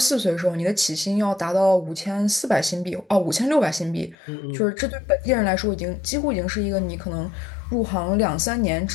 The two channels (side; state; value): right; drops out; at 4.2 s